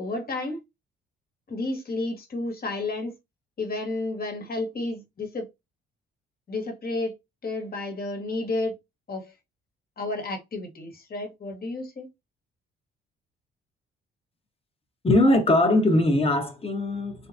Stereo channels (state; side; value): normal; both; correlation 0.62